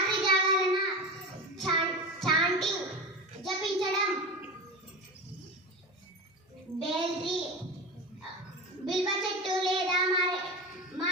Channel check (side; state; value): both; normal; correlation 0.25